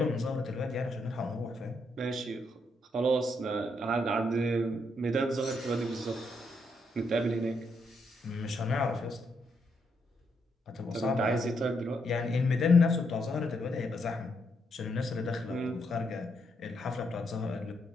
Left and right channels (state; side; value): normal; both; correlation 0.77